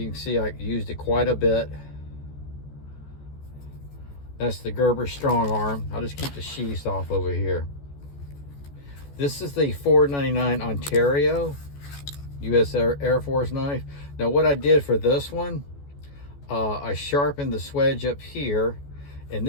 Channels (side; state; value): right; late; 14 ms